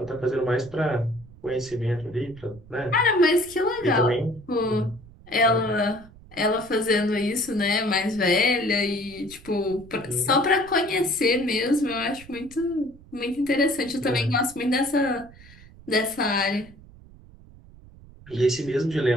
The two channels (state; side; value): noise; right; rumble, 21 dB below the sound